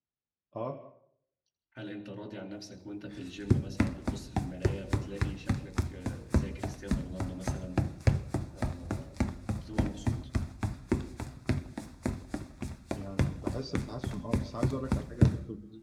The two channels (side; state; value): both; identical; correlation 1.00